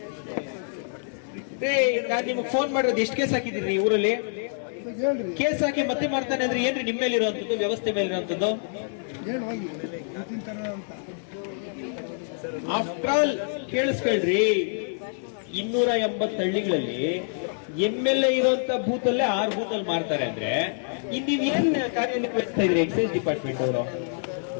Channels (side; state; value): right; silent; digital silence